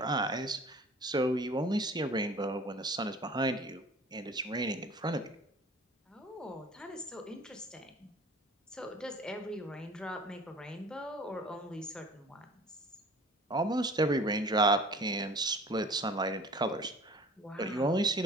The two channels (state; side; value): normal; both; correlation 0.46